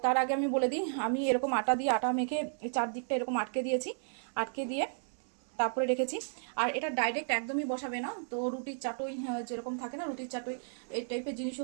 তার আগে আমি বলে দিই, আমি এরকম আটা মেখে চারদিকটা এরকম আটকে দিয়েছি, আটকে দিয়ে তারপরে রেখেছি। আর এটা ডাইরেক্ট একদমই বসাবে না, তো রুটির চাটুই যেরকম থাকে না, রুটির চাটুই এই টাইপের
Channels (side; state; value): left; silent; digital silence